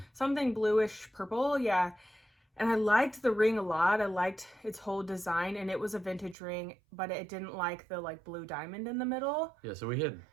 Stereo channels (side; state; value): left; drops out; at 6.4 s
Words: something bluish purple. Yeah. And I liked the ring a lot. I liked its whole design, and it was a vintage ring, but it didn't like the like blue diamond in the middle. Yeah, so